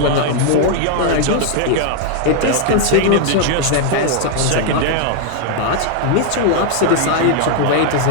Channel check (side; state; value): both; different; correlation 0.00